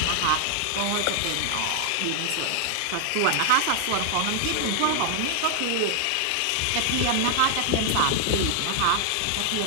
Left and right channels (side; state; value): both; different; correlation 0.00